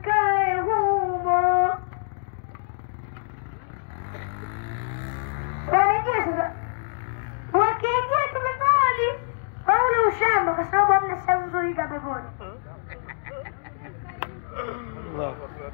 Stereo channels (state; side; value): silent; right; digital silence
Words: humo. shamba kwa sababu hamna sehemu nzuri kama peponi.